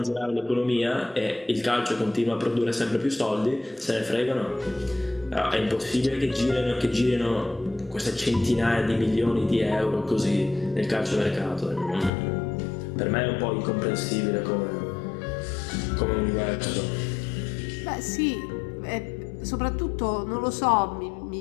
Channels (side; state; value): right; drops out; at 12.1 s